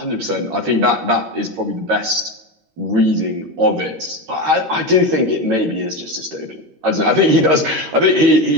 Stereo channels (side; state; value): left; late; 13 ms